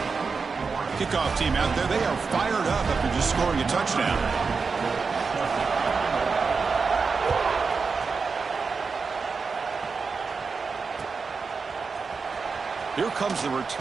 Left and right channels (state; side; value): quieter; left; 4.9 dB